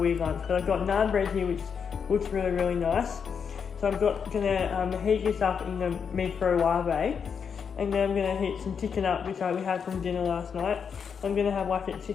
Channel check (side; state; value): right; quieter; 6.7 dB